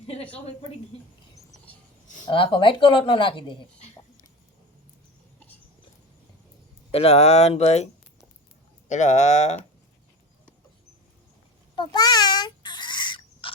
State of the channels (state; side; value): normal; both; correlation 0.29